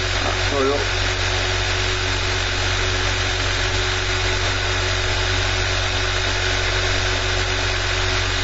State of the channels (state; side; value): identical; both; correlation 1.00